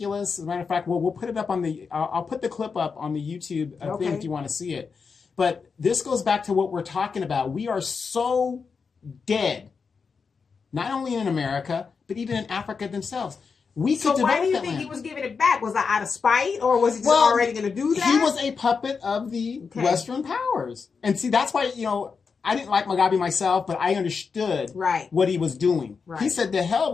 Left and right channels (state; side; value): quieter; right; 5.4 dB